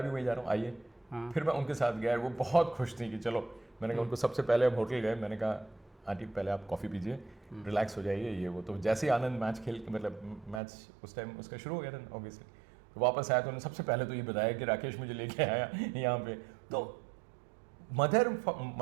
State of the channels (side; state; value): left; drops out; at 10.6 s